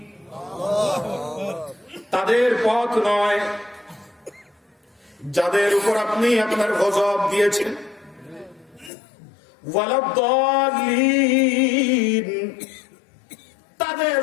তাদের পথ নয় যাদের উপর আপনি আপনার গজব দিয়েছেন। ওয়ালাদ-দাল্লিন,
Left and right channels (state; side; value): drops out; right; at 8.9 s